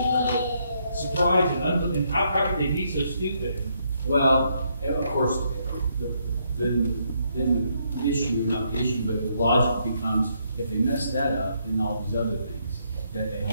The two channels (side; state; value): both; inverted; correlation -0.74